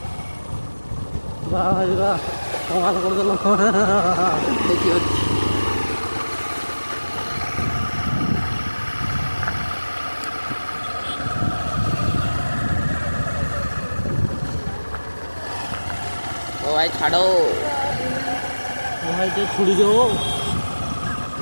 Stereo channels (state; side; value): inverted; both; correlation -1.00